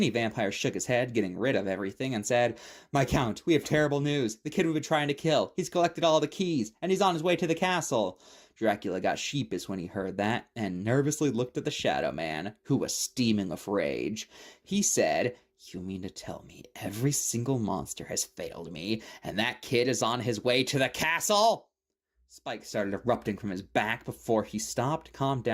vampire shook his head, getting rid of everything, and said, My count, we have terrible news. The kid we've been trying to kill. He's collected all the keys, and he's on his way to the castle. Dracula got sheepish when he heard that, and nervously looked at the Shadow Man, who was steaming with rage. He said, You mean to tell me every single monster has failed me, and that kid is on his way to the castle? Spike started erupting from his back before he stopped, calmed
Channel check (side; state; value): both; identical; correlation 1.00